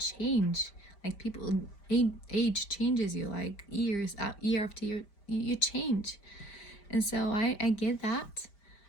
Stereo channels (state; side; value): late; right; 5.0 ms